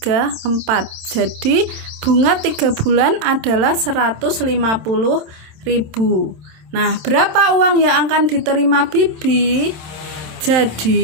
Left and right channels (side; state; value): left; late; 27 ms